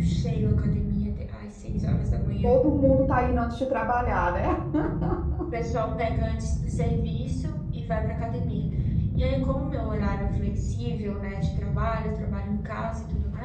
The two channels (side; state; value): both; identical; correlation 1.00